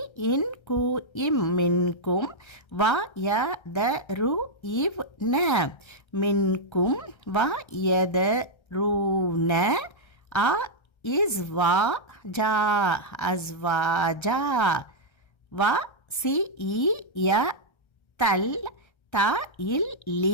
இன் கு இம் மின்கும் வ ய த ரு இவ் ந மின்கும் வ யத ரூன அ இஸ்வா ஜா அஸ்வாஜா வ சி இ ய தல் த இல்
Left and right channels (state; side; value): late; right; 1.3 ms